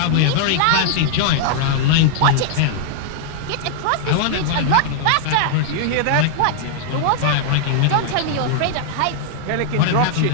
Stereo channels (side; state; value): both; different; correlation -0.01